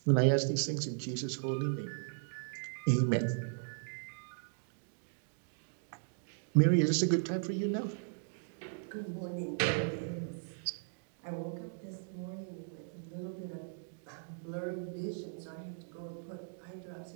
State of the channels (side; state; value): left; silent; digital silence